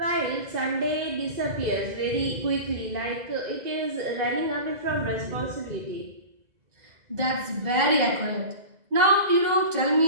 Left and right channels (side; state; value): left; late; 2.0 ms